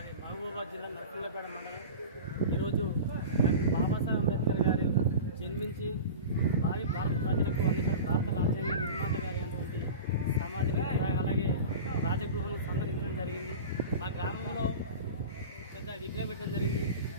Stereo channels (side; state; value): both; inverted; correlation -0.32